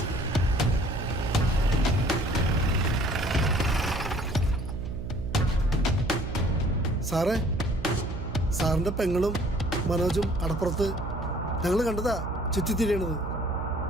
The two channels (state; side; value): noise; right; hum, 6 dB below the sound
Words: സാറേ, സാറിന്റെ പെങ്ങളും മനോജും അടപ്പുറത്ത് ഞങ്ങൾ കണ്ടതാ ചുറ്റിത്തിരിയണത്.